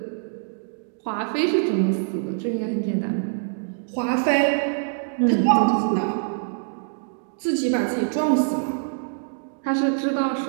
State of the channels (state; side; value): silent; left; digital silence